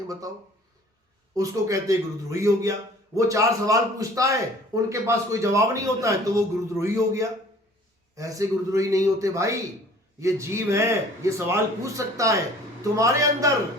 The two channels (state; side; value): normal; both; correlation 0.50